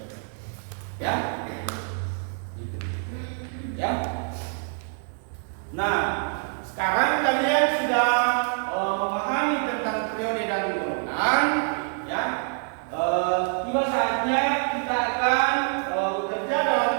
Ya, gitu. Ya. Nah, sekarang kalian sudah memahami tentang periode dan golongan. Ya, tiba saatnya kita akan bekerja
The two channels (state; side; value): silent; left; 61 dB below the other